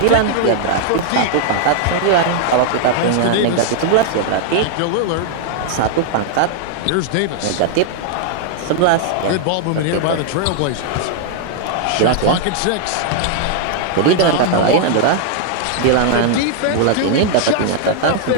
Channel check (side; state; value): both; different; correlation 0.00